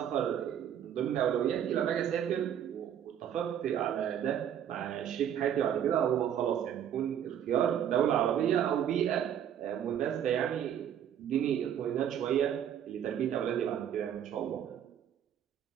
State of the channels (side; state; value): left; quieter; 9.6 dB